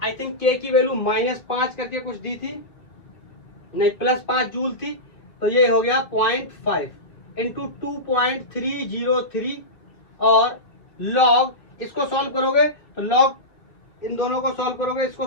आई थिंक k की वैल्यू -5 करके कुछ दी थी, नहीं +5 जूल थी, तो ये हो गया 0.5 इंटू 2.303 और log, इसको सॉल्व करोगे तो log इन दोनों को सॉल्व करोगे, इसको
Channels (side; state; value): right; late; 2.9 ms